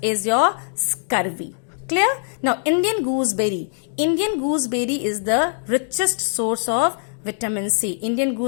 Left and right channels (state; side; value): silent; right; digital silence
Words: is your scurvy. Clear? Now, Indian gooseberry. Indian gooseberry is the richest source of vitamin C. Indian